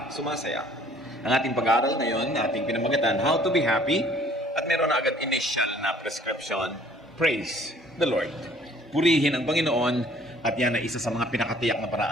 sumasaya. Ang ating pag-aaral ngayon, ating pinamagatan, How to be Happy, at meron na agad initial na prescription, Praise the Lord. Purihin ang Panginoon, at yan ay isa sa mga pinakatiyak na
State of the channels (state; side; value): normal; both; correlation 0.56